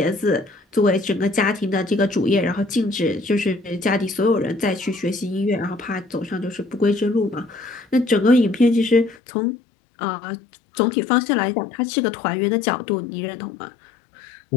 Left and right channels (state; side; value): drops out; right; at 9.2 s